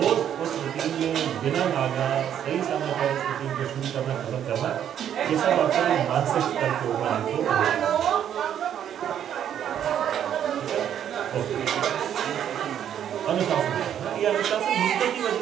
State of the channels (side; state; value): left; quieter; 9.7 dB